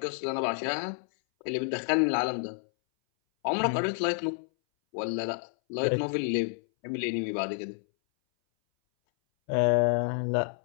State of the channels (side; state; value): right; silent; 58 dB below the other